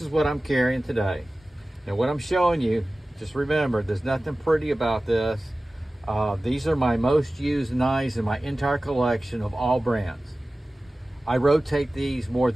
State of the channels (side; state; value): both; normal; correlation 0.97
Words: is what I'm carrying today. Now what I'm showing you, just remember, there's nothing pretty about this. These are my most used knives in my entire collection of all brands. I rotate these more